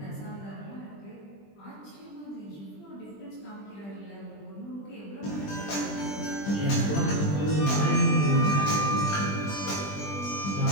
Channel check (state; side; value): late; right; 20 ms